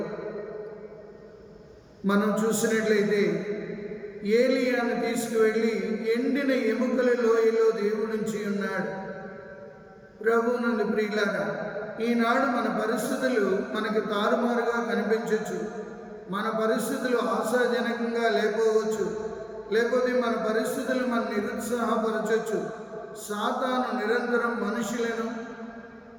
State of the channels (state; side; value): identical; both; correlation 1.00